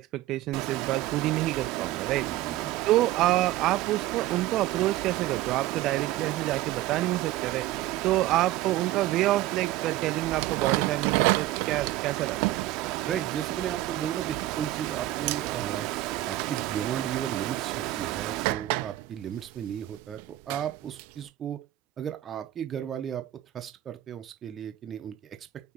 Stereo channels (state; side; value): quieter; left; 15.2 dB